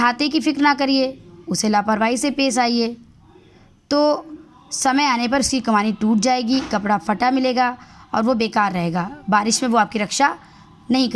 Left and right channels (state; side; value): identical; both; correlation 1.00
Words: की फिक्र ना करिए, उसे लापरवाही से पेश आइए तो समय आने पर उसकी कमानी टूट जाएगी, कपड़ा फटा मिलेगा और वो बेकार रहेगा। बारिश में वो आपकी रक्षा नहीं